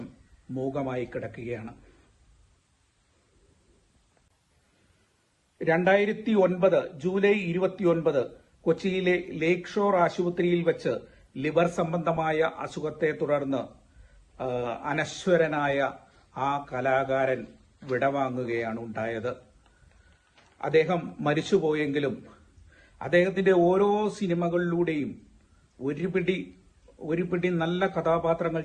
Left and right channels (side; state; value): both; identical; correlation 1.00